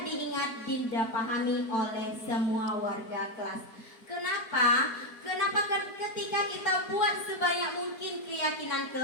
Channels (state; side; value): late; right; 4.5 ms